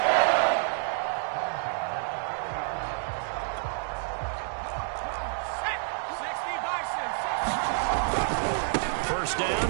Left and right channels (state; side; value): silent; left; digital silence